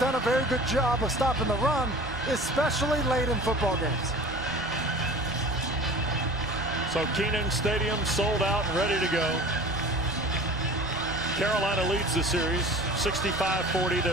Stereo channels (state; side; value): noise; left; rumble, 17 dB below the sound